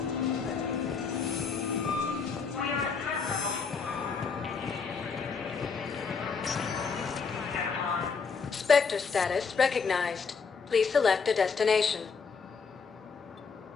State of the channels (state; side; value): quieter; right; 5.4 dB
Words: Spectre status recognized. Please select a destination.